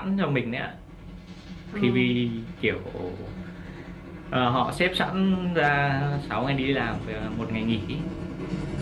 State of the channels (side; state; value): both; identical; correlation 1.00